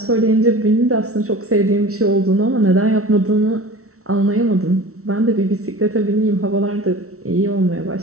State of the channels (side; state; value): left; late; 0.63 ms